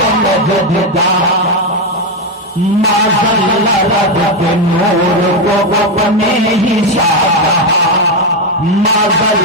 नजद का। माज़ल्ला रब के नूर को अपने ही साधा,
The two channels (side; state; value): both; normal; correlation 0.08